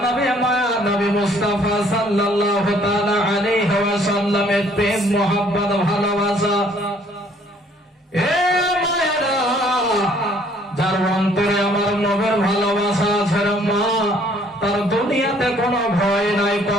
নবী মায়া নবী মুস্তাফা সাল্লাল্লাহু তাআলা আলাইহি ওয়াসাল্লামের প্রেম মোহাব্বত ভালোবাসা এ মায়েরা যার অন্তরে আমার নবীর ভালোবাসা আছে রে মা তার দুনিয়াতে কোনো ভয় নাই,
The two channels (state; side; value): normal; both; correlation 0.61